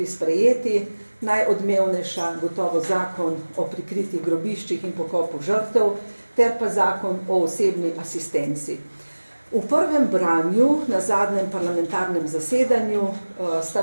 sprejeti, najodmevnejša gotovo zakon o prikritih grobiščih in pokopu žrtev, ter pa zakon o osebni asistenci. V prvem branju, na zadnjem parlamentarnem zasedanju, sta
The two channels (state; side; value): inverted; both; correlation -1.00